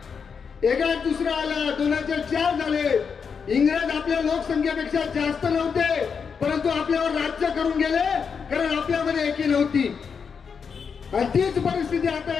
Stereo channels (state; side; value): quieter; right; 6.1 dB